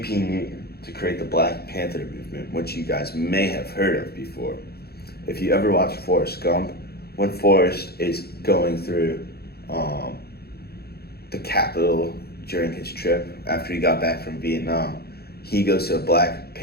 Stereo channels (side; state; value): right; late; 0.46 ms